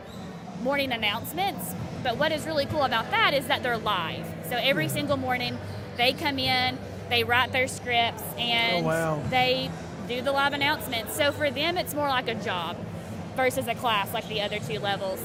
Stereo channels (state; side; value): identical; both; correlation 1.00